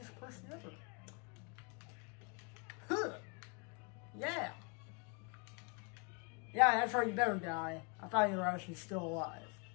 person ever. Huh. Yeah. Yeah, that's right, you better die. I thought you were actually still alive.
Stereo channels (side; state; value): right; quieter; 34.3 dB